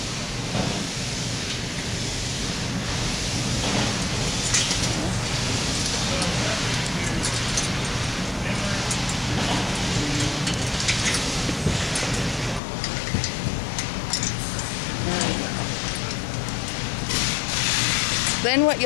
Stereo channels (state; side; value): drops out; right; at 12.6 s